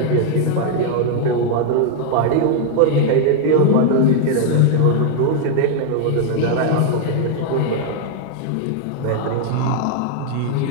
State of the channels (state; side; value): different; both; correlation 0.00